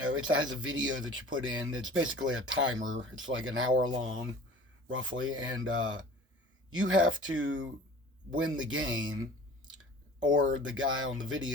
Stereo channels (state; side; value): normal; both; correlation 0.44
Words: has a video that you put in. It's basically a timer. It's like an hour long, roughly, and you have to win the game, or the guy on the